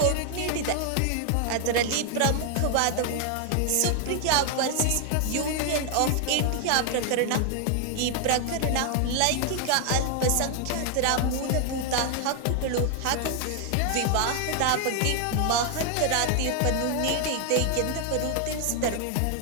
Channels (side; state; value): both; different; correlation 0.00